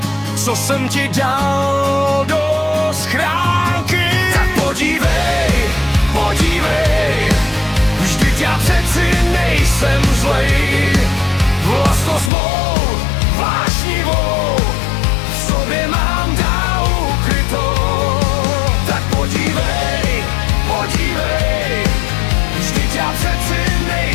co jsem ti dal do schránky. Tak podívej, podívej, vždyť já přeci nejsem zlej. Vlastnost mou vášnivou v sobě mám dál ukrytou. Tak podívej, podívej, vždyť já přeci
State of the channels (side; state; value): right; drops out; at 12.3 s